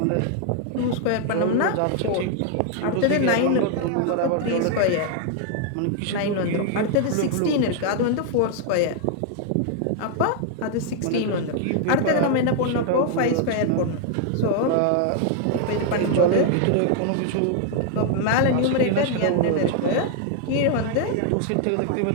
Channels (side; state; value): both; different; correlation 0.00